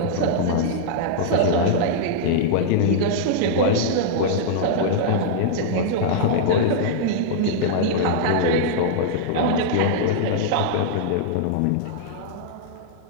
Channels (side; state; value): both; different; correlation -0.02